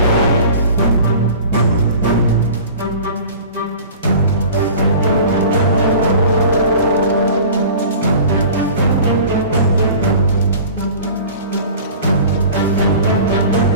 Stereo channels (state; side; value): inverted; both; correlation -0.41